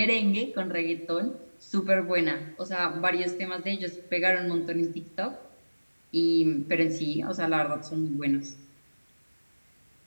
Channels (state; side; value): inverted; both; correlation -1.00